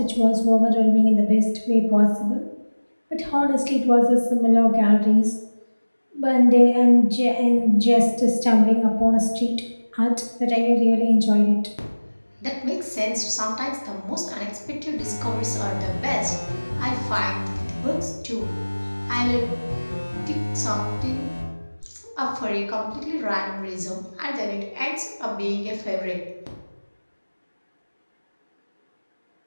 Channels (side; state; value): both; inverted; correlation -1.00